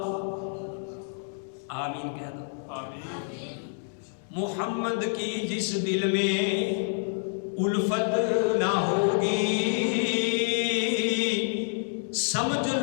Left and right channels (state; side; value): silent; right; digital silence